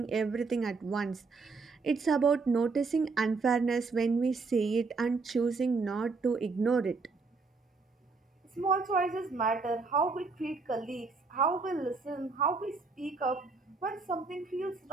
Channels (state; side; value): quieter; left; 4.3 dB